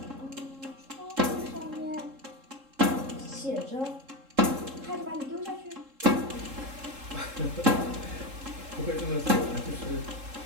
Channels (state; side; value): late; left; 3.7 ms